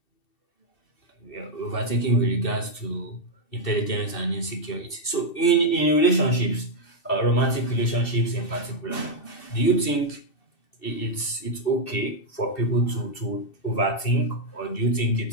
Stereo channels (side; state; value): right; late; 2.7 ms